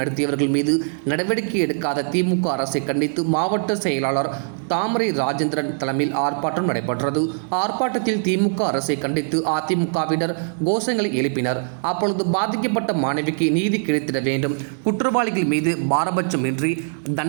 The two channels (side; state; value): left; silent; digital silence